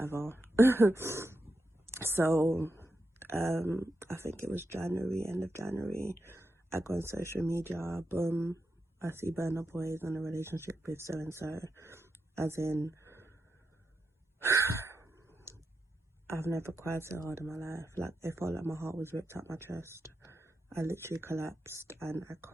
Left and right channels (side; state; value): both; normal; correlation 0.87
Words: So I think it was January, end of January, I go on social media, boom, I see Burna Boy is in a relationship with so and so. As in, I've never cried so hard in my life. Like, it felt like my heart was ripped out my chest. I literally collapsed and I